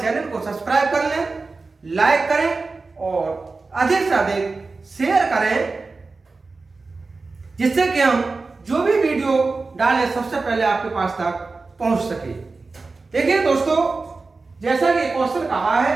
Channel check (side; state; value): left; quieter; 3.9 dB